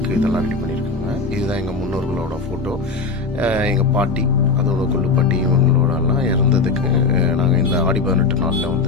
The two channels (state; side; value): quieter; right; 4.3 dB